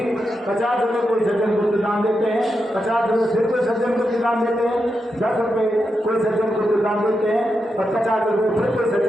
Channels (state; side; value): normal; both; correlation 0.86